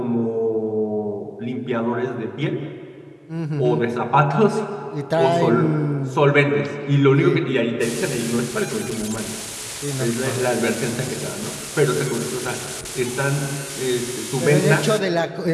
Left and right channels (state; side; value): identical; both; correlation 1.00